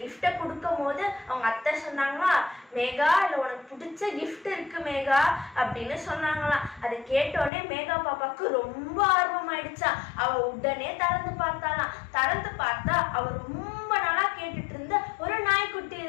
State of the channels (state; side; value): drops out; right; at 7.5 s